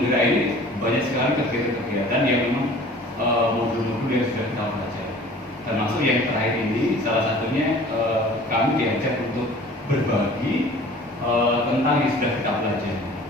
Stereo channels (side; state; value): both; normal; correlation 0.46